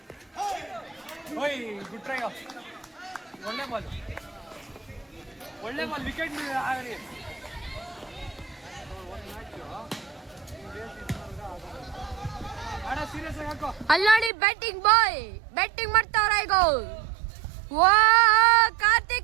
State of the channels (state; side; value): drops out; left; at 14.3 s